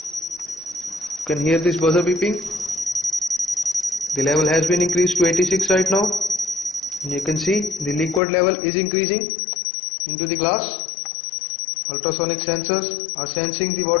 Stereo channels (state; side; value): drops out; right; at 8.2 s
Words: You can hear this buzzer beeping. The level has been increased to 86 right now. And you can see the liquid level is increasing into the glass. Ultrasonic sensors are sensing the